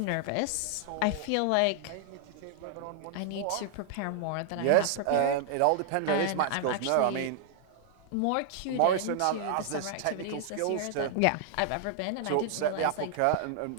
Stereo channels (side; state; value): both; different; correlation -0.01